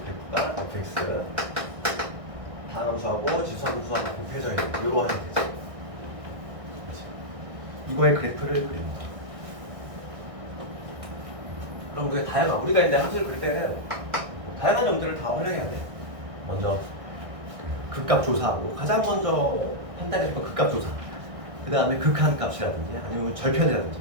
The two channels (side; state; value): left; late; 1.6 ms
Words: 그래프가 fx 다함수하고 지수함수하고 곱해져야 돼. 이러한 되지. 이거의 그래프를 그립니다. 그럼 우리가 이제 함수를 그릴 때는 다양한 점들을 다 활용해야 돼. 먼저 극값 조사하고 가장 먼저 판단해줄 건 극값 조사. 그 다음에 극한값이라든지 아니면 절편이라든지